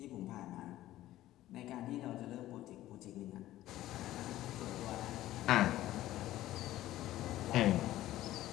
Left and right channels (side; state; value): right; quieter; 14.7 dB